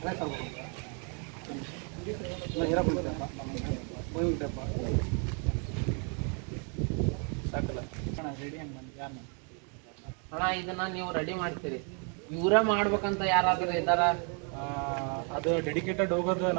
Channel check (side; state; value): left; quieter; 38.4 dB